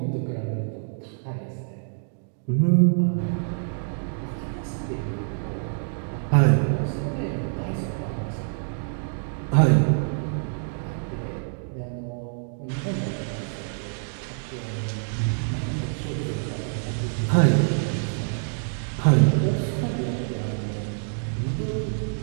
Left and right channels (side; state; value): left; silent; digital silence